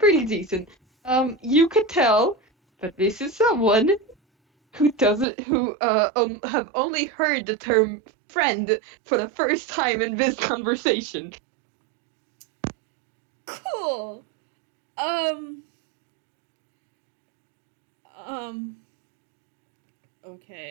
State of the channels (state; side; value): drops out; left; at 5.2 s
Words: decent. You could tell that this is someone who have only heard the term friend for the first time in this conversation. Cool. Um. Um.